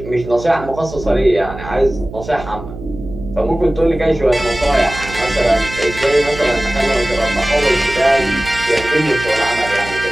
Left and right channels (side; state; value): right; noise; hum, 12 dB below the sound